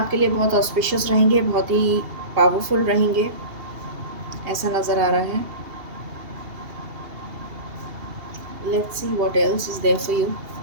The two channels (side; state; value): left; late; 2.8 ms